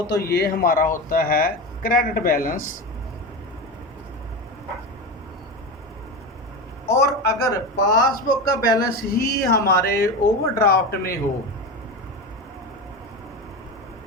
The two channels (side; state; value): both; normal; correlation 0.22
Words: तो ये हमारा होता है क्रेडिट बैलेंस। और अगर पासबुक का बैलेंस ही हमारे ओवरड्राफ्ट में हो,